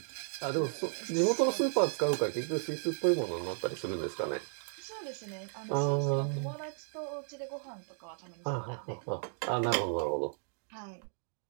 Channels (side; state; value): left; silent; 55 dB below the other